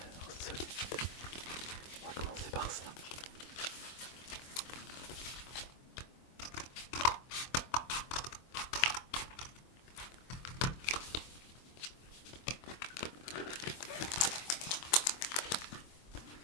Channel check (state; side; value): late; right; 24 ms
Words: solide. On va commencer par ça.